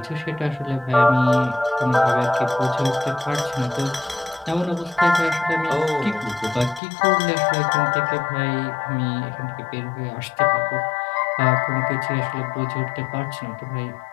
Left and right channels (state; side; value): drops out; right; at 6.8 s